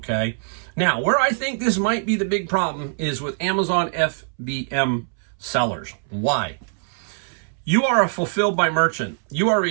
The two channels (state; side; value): silent; left; 64 dB below the other